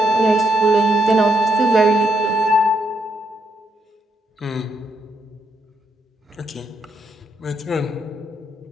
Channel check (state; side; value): normal; both; correlation 0.78